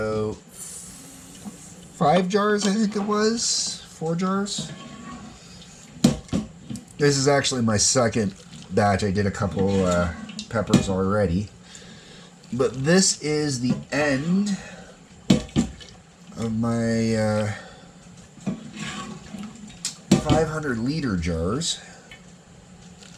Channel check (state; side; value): identical; both; correlation 1.00